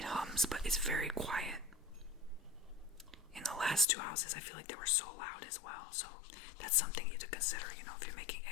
hums, but it's very quiet. In the last two houses, I feel like they were so loud as well. So that's something you to consider, you know, if you're making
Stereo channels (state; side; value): drops out; right; at 3.9 s